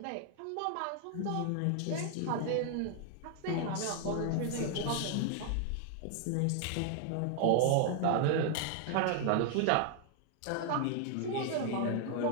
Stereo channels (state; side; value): different; both; correlation 0.00